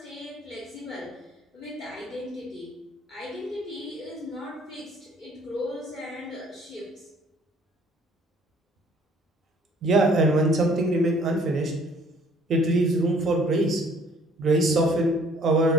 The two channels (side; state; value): both; normal; correlation 0.58